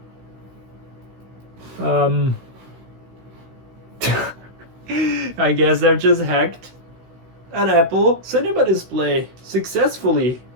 I guess I've just hacked an Apple Cinema display successfully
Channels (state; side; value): late; left; 16 ms